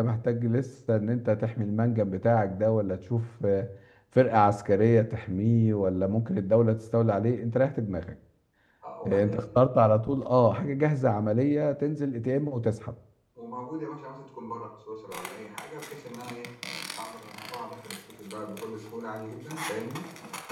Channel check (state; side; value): identical; both; correlation 1.00